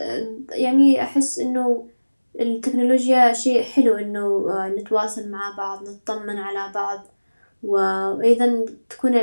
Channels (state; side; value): inverted; both; correlation -1.00